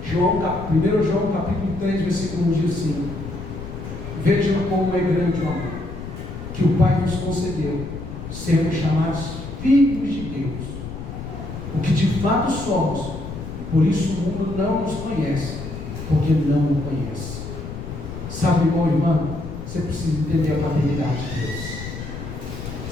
1 João capítulo 3, versículo 1 diz assim: vejam como é grande o amor que o Pai nos concedeu, sermos chamados filhos de Deus, o que de fato somos. Por isso o mundo não nos conhece, porque não o conhece. Sabe, irmão e irmã, você precisa entender a paternidade de Deus.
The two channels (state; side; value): noise; left; rumble, 9 dB below the sound